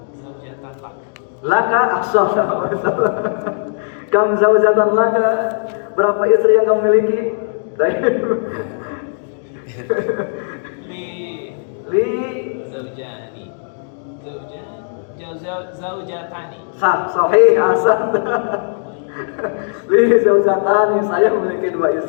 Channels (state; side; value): silent; right; digital silence